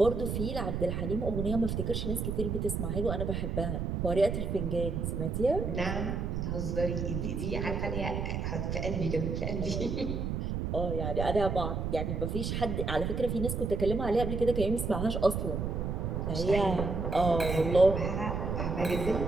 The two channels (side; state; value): right; noise; rumble, 2 dB below the sound